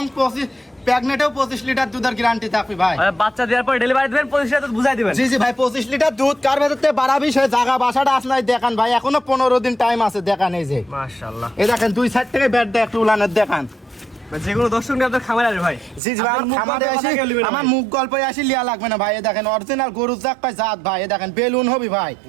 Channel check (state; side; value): drops out; left; at 16.0 s